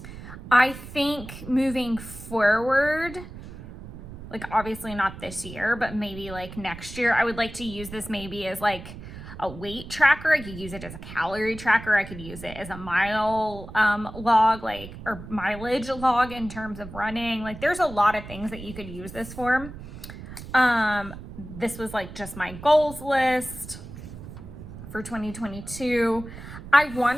I think moving forward, like obviously not this year, but maybe like next year, I would like to use this maybe as like a weight tracker. I could use it as a calorie tracker. I could use it as a mile log, or mileage log in terms of running. Like there's a lot of things that you could use this for. This was like just my goals list for 2022. I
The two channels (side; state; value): right; noise; rumble, 13 dB below the sound